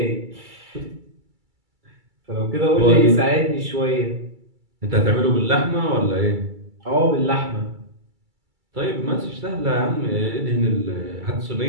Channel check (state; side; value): late; left; 2.3 ms